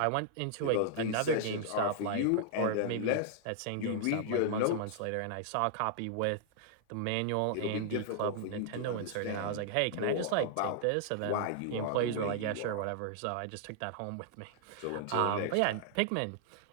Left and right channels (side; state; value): both; different; correlation -0.01